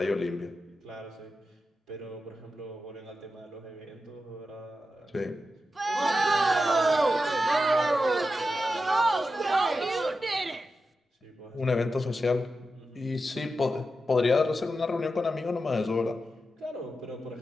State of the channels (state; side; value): normal; both; correlation 0.90